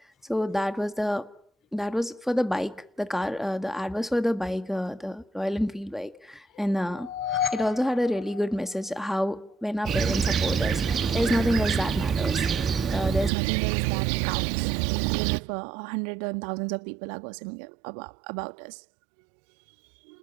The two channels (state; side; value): drops out; left; at 13.3 s